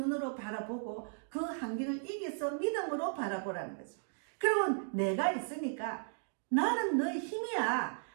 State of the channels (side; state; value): left; silent; digital silence